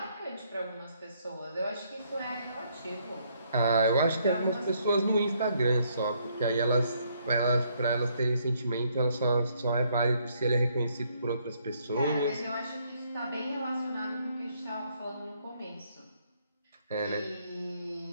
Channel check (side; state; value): both; inverted; correlation -0.70